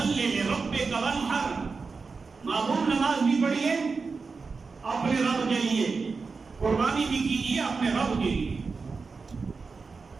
لِرَبِّكَ وَانْحَرْ، معمول نماز بھی پڑھیے اپنے رب کے لیے، قربانی بھی کیجیے اپنے رب کے لیے۔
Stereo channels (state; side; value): quieter; left; 4.6 dB